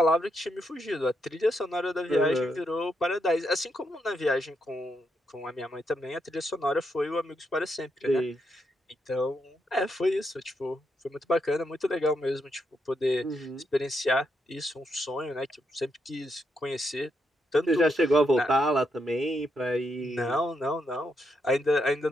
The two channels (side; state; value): both; normal; correlation 0.80